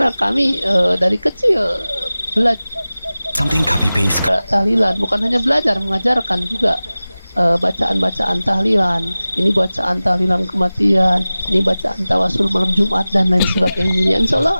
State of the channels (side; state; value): both; inverted; correlation -0.97